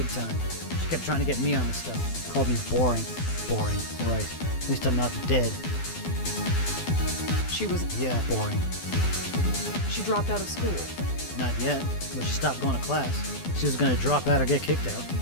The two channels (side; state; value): right; late; 12 ms